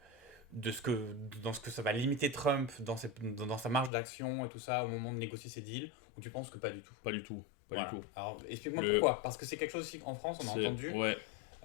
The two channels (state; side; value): drops out; right; at 3.9 s